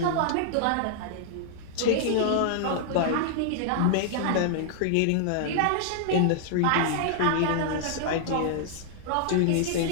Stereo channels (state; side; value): different; both; correlation -0.01